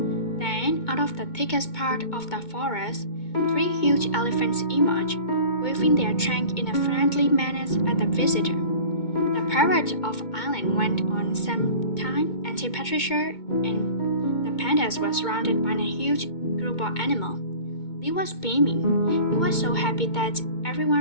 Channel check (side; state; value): right; late; 2.2 ms